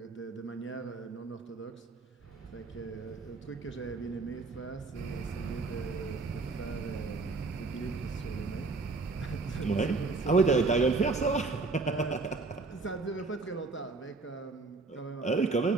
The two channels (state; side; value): quieter; left; 3.8 dB